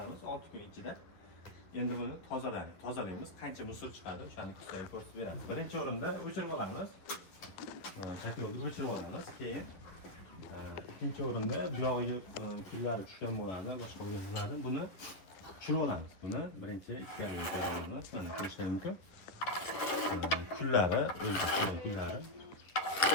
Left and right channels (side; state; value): right; late; 11 ms